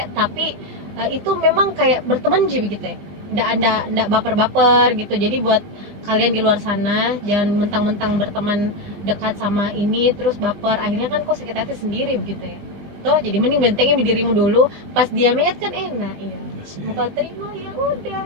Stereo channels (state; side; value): late; left; 20 ms